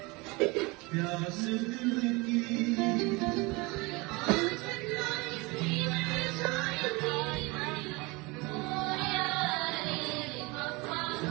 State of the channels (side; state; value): left; quieter; 25.3 dB